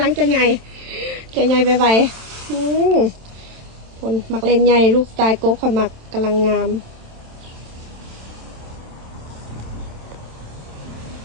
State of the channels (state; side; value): late; left; 27 ms